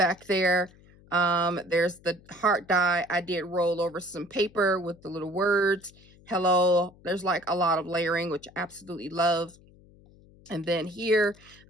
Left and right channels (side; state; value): left; noise; hum, 26 dB below the sound